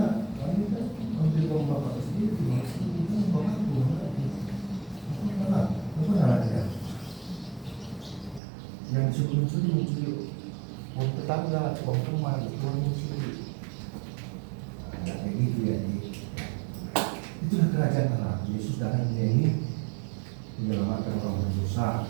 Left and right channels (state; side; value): drops out; left; at 8.4 s